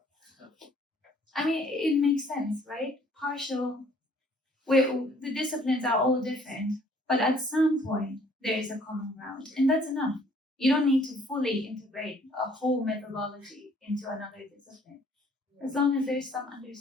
I mean, it makes sense, right? Partial, where the disciplines are all different, but at some point there is a common ground, and that's enough. You don't need to fully integrate a whole methodology into another discipline, as long as there's some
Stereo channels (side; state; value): both; normal; correlation 0.60